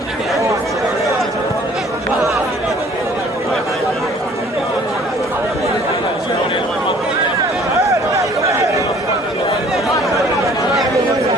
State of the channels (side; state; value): both; normal; correlation 0.54